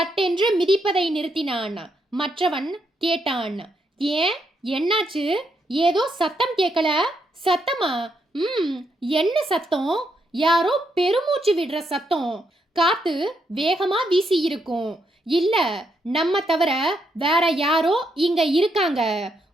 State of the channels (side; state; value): both; normal; correlation 0.78